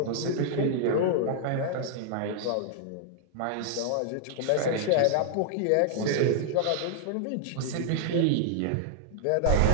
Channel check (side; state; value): both; different; correlation -0.01